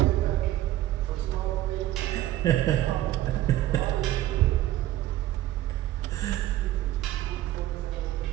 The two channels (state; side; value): quieter; left; 14.3 dB